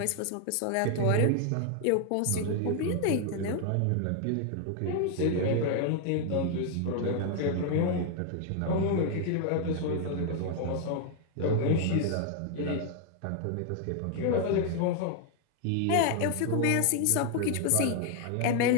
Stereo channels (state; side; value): different; both; correlation 0.00